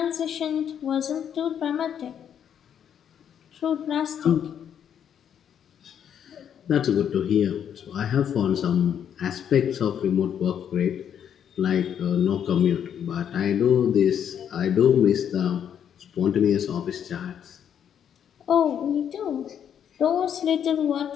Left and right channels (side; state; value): right; quieter; 8.8 dB